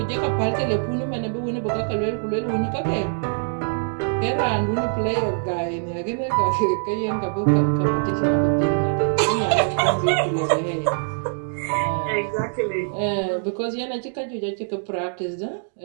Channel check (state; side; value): silent; left; digital silence